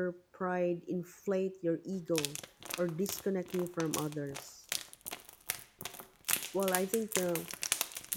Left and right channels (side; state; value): both; identical; correlation 1.00